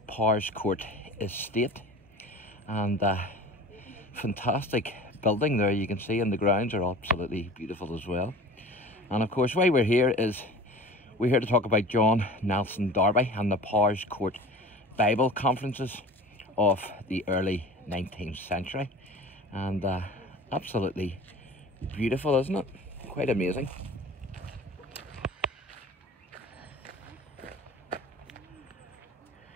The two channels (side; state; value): both; normal; correlation 0.40